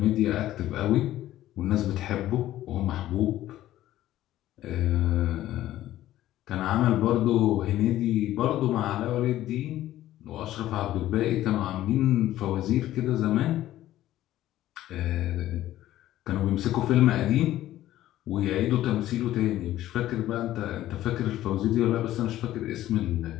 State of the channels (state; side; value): quieter; right; 14.0 dB